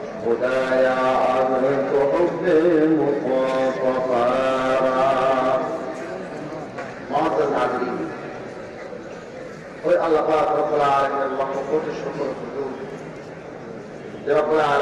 اذنت حب مصطفى. معزز حاضرین، আল্লাহ পাক রব্বুল আলামিনের লক্ষ কোটি শুকর হুজুর যে রব্বুল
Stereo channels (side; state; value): both; identical; correlation 1.00